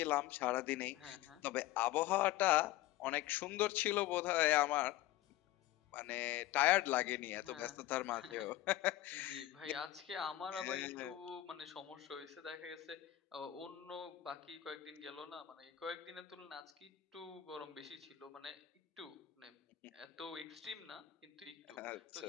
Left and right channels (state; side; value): quieter; right; 14.7 dB